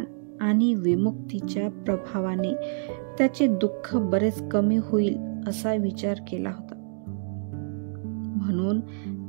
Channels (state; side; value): silent; left; digital silence